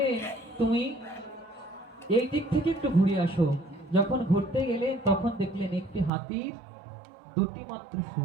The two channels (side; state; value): left; drops out; at 6.1 s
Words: তুমি এই দিক থেকে একটু ঘুরে আসো যখন ঘুরতে গেলেন তখন দেখলেন একটি হাতির দুটি মাত্র